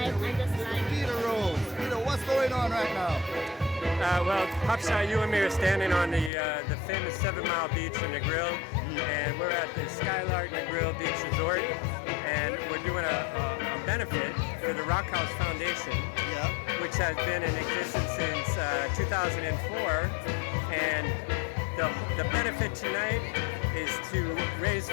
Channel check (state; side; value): drops out; right; at 6.3 s